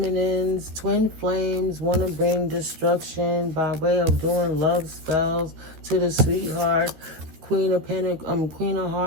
twin flames want to bring destruction by way of doing love spells to the sweetheart, Queen of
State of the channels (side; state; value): left; late; 13 ms